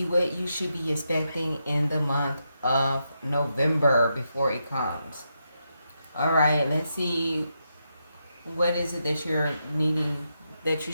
what you should be expecting in the month of November before it comes. All right, let's see what is it that you're needing, that you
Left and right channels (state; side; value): inverted; both; correlation -0.84